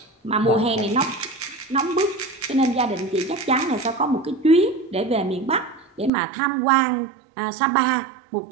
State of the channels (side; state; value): left; drops out; at 6.1 s